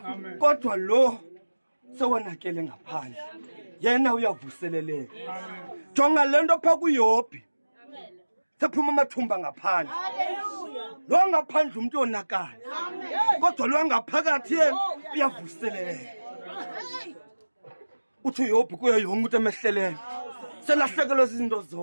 Kodwa lo sewonakele ngaphandle. Yena uyavuseleleka. Jonga lento pha kuYobhi. Sephuma amathumba ngaphandle. Lo ngaphandle umuntu onakala. Kodwa lo ngaphakathi yena uyavuseleleka. Uthi uYobhi kuyo yonke umuntu emehleleyo. Selahlekelwe izinto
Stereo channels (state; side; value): inverted; both; correlation -1.00